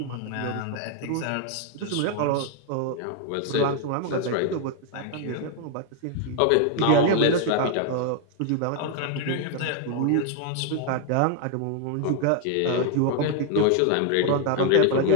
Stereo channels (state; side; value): different; both; correlation 0.00